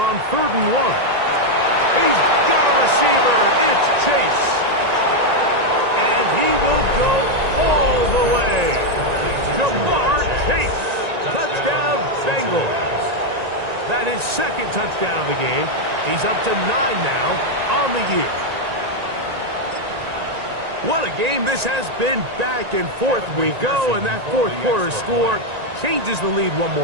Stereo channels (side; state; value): left; late; 1.9 ms